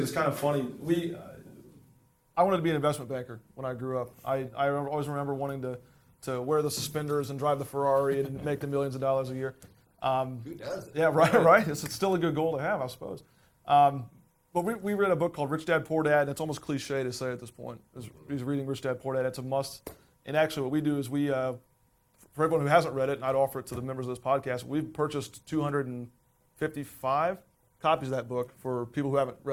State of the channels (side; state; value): both; identical; correlation 1.00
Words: is kind of funny. I wanted to be an investment banker when I grew up. I always remember wanting to wear the suspenders and drive the Ferrari and make the millions of dollars a year. Who does? Yeah, right. It's still a good goal to have, I suppose. But we read a book called Rich Dad, Poor Dad, and it's almost cliche to say at this point. He's reading Rich Dad, Poor Dad. It's a must. And actually what we do is for everyone who hasn't read it, and I'd offer it to the members of this podcast, we've purchased 255 copies of that book for people who haven't